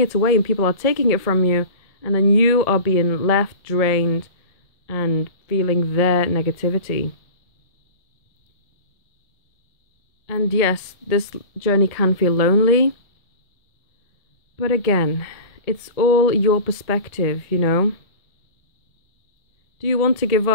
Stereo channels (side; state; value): right; late; 1.7 ms